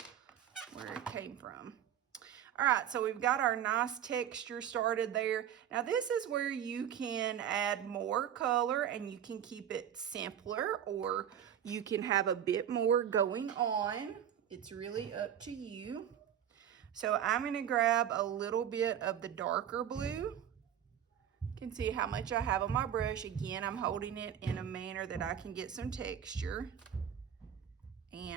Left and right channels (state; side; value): quieter; left; 9.7 dB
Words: where it came from. All right, so we've got our nice texture started there. Now this is where you can add more color and you can keep it simpler, or you can have a bit more going on. It's really up to you. So I'm gonna grab a little bit of the darker blue. You can see how much I have on my brush. Again, I'm holding it in a manner that I can get some texture.